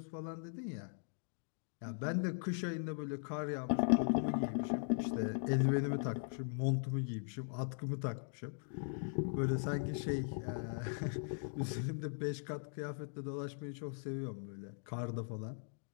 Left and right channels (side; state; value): right; silent; digital silence